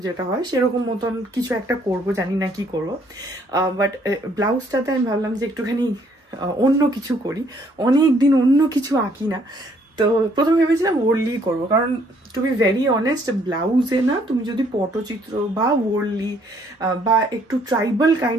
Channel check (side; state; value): both; normal; correlation 0.65